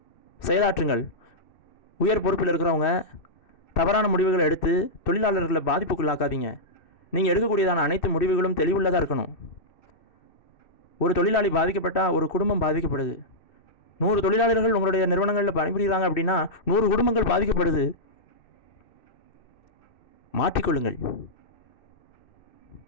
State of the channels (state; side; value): late; right; 2.6 ms